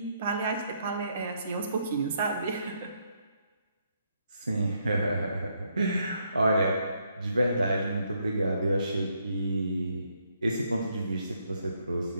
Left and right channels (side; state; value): both; inverted; correlation -0.74